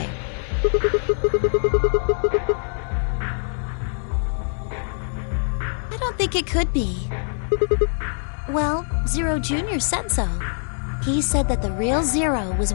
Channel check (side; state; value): right; silent; 61 dB below the other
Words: I don't think it could be. Well, Zero Jr. said so. He said that the real Zero was